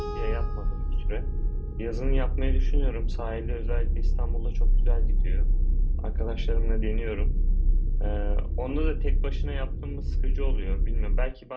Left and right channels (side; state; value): both; identical; correlation 1.00